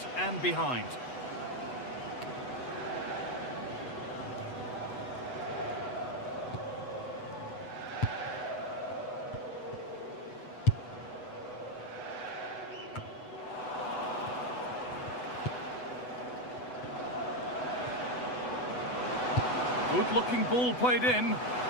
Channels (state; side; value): late; right; 8.1 ms